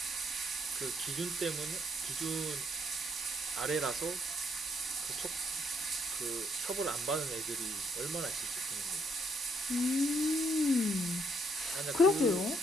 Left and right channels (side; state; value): both; normal; correlation 0.72